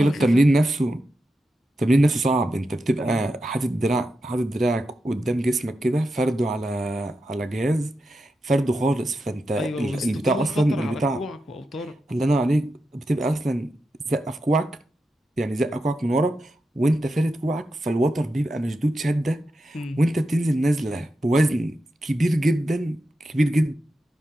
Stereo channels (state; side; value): normal; both; correlation 0.88